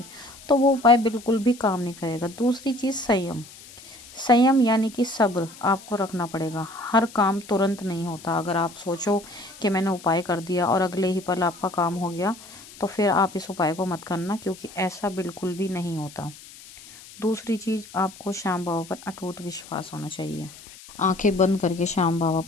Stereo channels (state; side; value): noise; left; hiss, 19 dB below the sound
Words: तो वो उपाय बिल्कुल भी काम नहीं करेगा। दूसरी चीज़, संयम यानी कि सब्र आपको रखना पड़ेगा। हर काम तुरंत नहीं होता। अगर आप सोचो कि मैंने उपाय कर दिया और अगले ही पल आपका काम हो गया, तो फिर आप इस उपाय को मत करना, क्योंकि ऐसा बिल्कुल भी नहीं होता। दूसरी चीज़, आपको श्याम बाबा पर अटूट विश्वास होना चाहिए। आंखें बंद करके श्याम बाबा